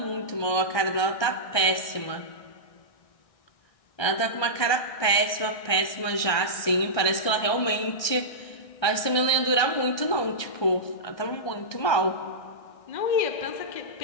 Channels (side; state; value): right; late; 1.2 ms